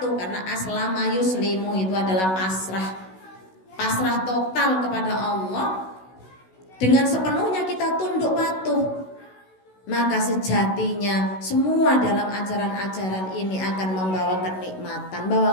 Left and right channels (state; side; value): late; right; 16 ms